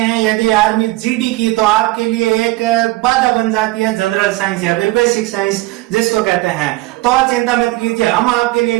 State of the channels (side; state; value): left; quieter; 19.6 dB